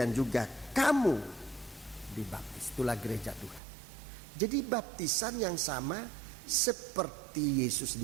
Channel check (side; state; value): left; drops out; at 3.6 s